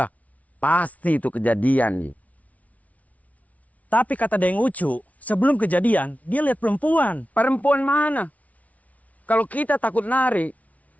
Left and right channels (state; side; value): late; right; 0.069 ms